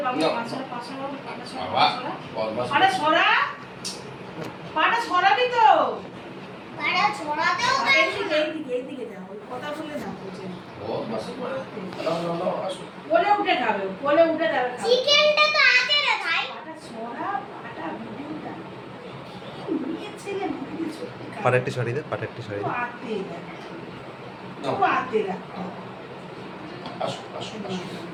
বাবা পাঁচশোরা আরে সরা পাটা সরাবি তো পাটা ছড়াতেও এইদিকে যাও কথা বলে না বলছে ও বাস কোলে উঠে খাবে কোলে উঠে যাবে চিকেনটা তো আছে রে ভাই পাটা সরা পাটা ভিডিওটা নিয়ে ছেলে মুখে সত্যি পাটাটি শাড়ি দে পাটাটি শাড়ি দে আতে রাখ আসো আসো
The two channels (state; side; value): identical; both; correlation 1.00